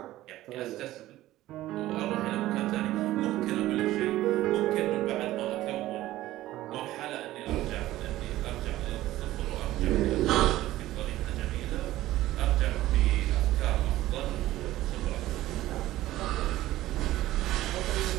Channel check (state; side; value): quieter; left; 15.5 dB